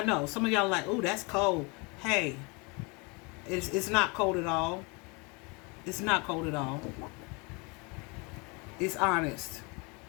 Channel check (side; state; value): right; quieter; 29.6 dB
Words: know some of y'all are like, oh, that's cold. Hey, it's not cold at all. It's not cold at all. It's honest.